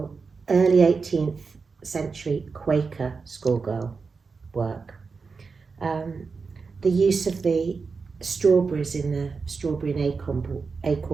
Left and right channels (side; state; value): left; quieter; 4.8 dB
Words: early 18th century Quaker schoolgirl work. The use of the strawberries in the strawberry and